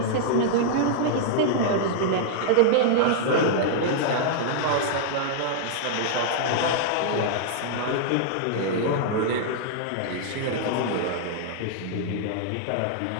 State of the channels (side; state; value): both; different; correlation -0.01